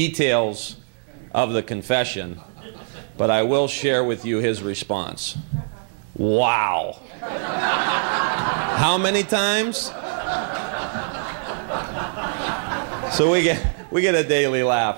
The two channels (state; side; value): silent; left; digital silence